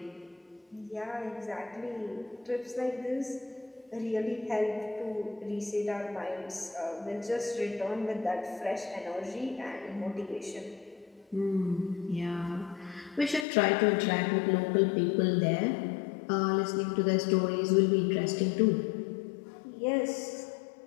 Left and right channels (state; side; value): drops out; right; at 13.5 s